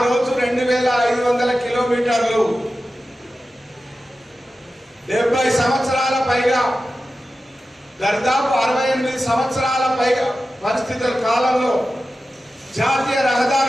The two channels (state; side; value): normal; both; correlation 0.93